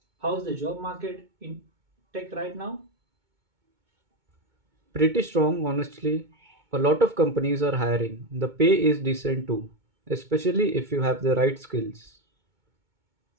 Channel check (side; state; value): left; late; 2.2 ms